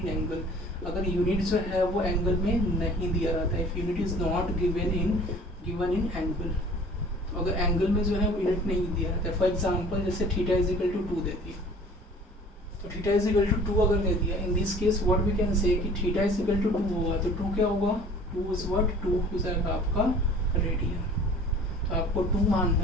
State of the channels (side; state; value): both; normal; correlation 0.48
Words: angle, अगर यूनिट जो है वो एंगल में नहीं दिया रहता है, if unit is not given in angle, तो अगर एंगल में जो है वो यूनिट नहीं दिया रहता है। फॉर एग्जाम्पल जैसे थीटा इज इक्वल टू 2 दे दिया, तो थीटा इज इक्वल टू 2 अगर दे दिया, in this case what we can say कि थीटा इज इक्वल टू 2 होगा, तो 2 क्या होगा, 2 इज व्हाट, 2 हो जाएगा आपका रेडियन, तो आपको 2